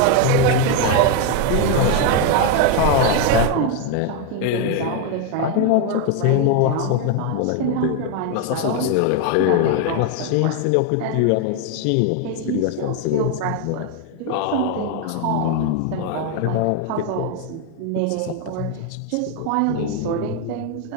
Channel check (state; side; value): different; both; correlation 0.01